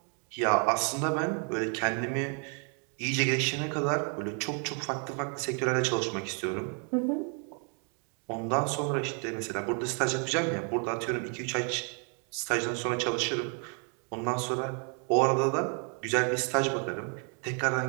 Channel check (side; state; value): left; quieter; 39.2 dB